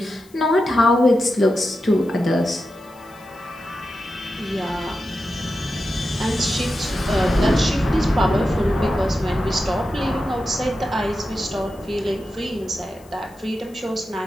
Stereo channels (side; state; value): left; noise; hiss, 27 dB below the sound